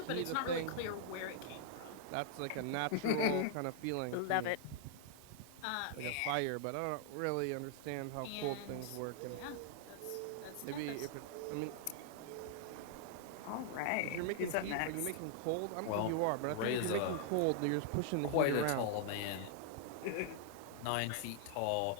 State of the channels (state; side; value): different; both; correlation 0.00